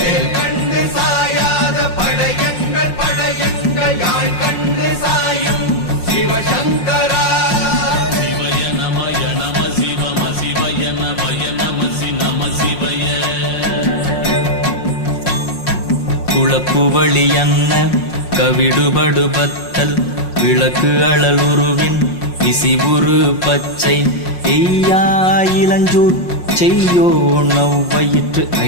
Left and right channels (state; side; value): late; right; 5.6 ms